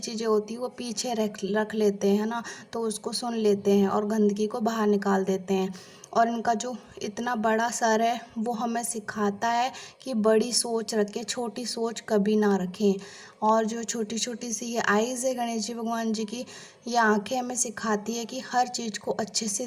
होती है वो पीछे रख रख लेते हैं ना। तो उसको सुन लेते हैं और गंदगी को बाहर निकाल देते हैं। और इनका जो इतना बड़ा सर है वो हमें सिखाता है कि बड़ी सोच रखें, छोटी सोच कभी ना रखें। और जो छोटी छोटी सी ये आइज़ है गणेश जी भगवान जी की, ये आंखें हमें सिखाती है कि हर चीज़ को अच्छे से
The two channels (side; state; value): both; identical; correlation 1.00